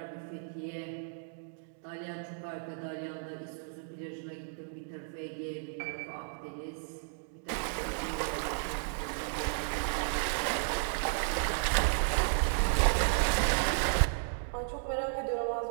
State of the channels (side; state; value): left; silent; digital silence